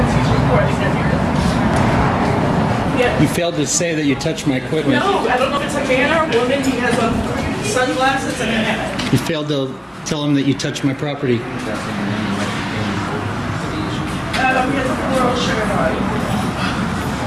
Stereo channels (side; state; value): both; identical; correlation 1.00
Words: You failed to say that you touched my equipment. No, I don't know if it's a man or a woman. He has on sunglasses and a hat. You failed to tell him that you touched my property. He has a floral shirt on.